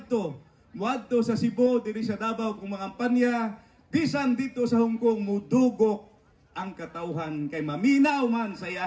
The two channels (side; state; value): both; identical; correlation 1.00